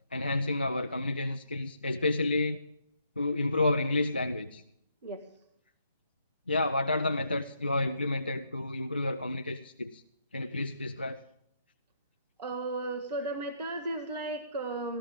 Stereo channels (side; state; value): both; inverted; correlation -0.75